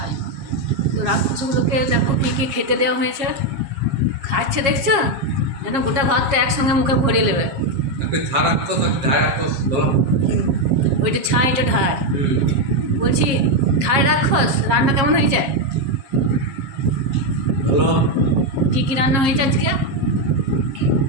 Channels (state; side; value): late; left; 7.3 ms